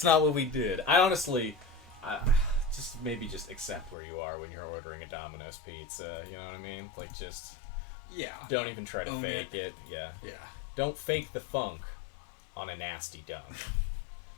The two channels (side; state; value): right; drops out; at 4.0 s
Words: not what we did. I honestly, just accept where you are when you're ordering a Domino's pizza. You know what I mean? Like just Yeah, don't even try to Own fake it. it. Yeah. yeah. Don't fake the funk on a nasty dunk.